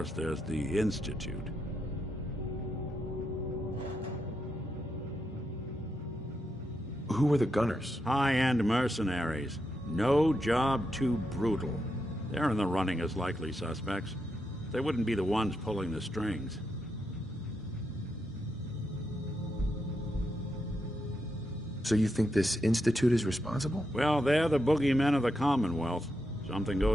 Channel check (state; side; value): normal; both; correlation 0.83